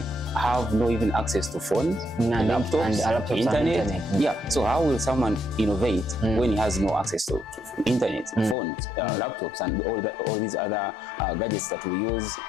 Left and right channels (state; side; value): drops out; right; at 8.6 s